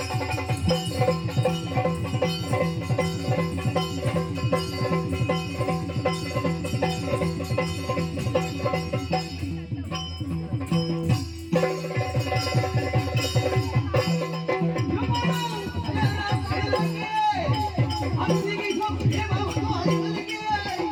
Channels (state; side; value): identical; both; correlation 1.00